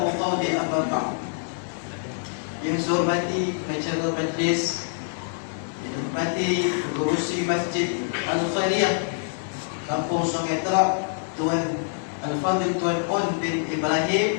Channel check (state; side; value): silent; right; digital silence